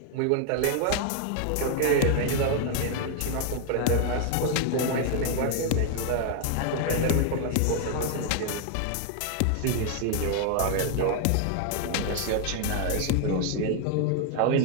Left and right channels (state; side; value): different; both; correlation 0.00